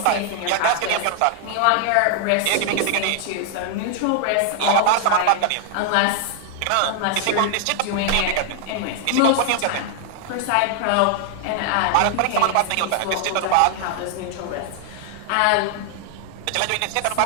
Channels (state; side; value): different; both; correlation 0.00